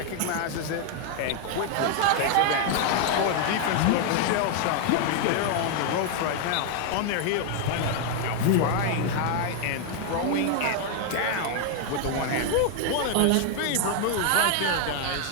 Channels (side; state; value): both; different; correlation 0.00